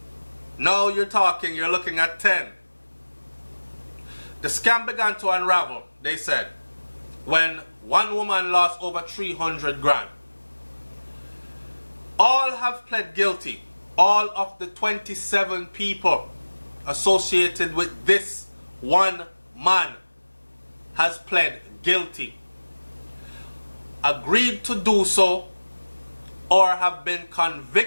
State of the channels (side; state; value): both; inverted; correlation -1.00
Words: Now you're talking, you're looking at 10. The scam began to unravel, they said, when one woman lost over 300 grand. All have pled guilty. All of the 27 people associated with this one man has pled guilty, agreed to do so, or have been